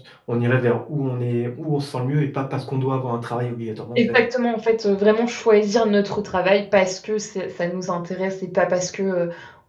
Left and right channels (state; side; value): identical; both; correlation 1.00